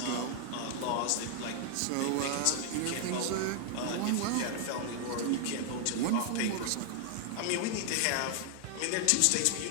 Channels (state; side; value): different; both; correlation 0.00